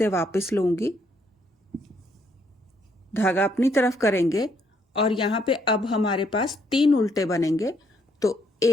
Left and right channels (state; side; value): normal; both; correlation 0.71